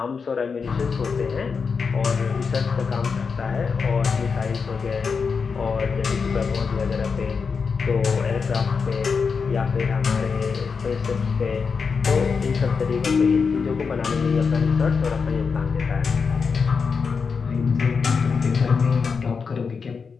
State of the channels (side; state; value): right; quieter; 5.4 dB